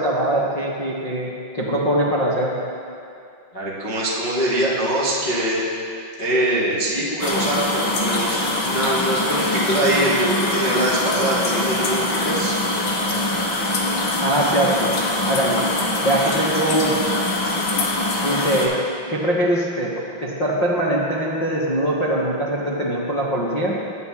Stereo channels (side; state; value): right; late; 6.0 ms